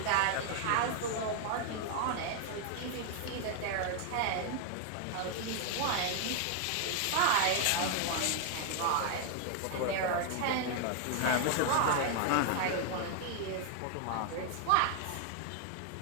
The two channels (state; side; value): different; both; correlation 0.00